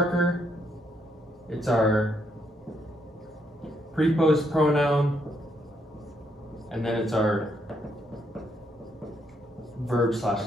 It's our preposed pronoun, and then it's our verb /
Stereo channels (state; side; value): normal; both; correlation 0.75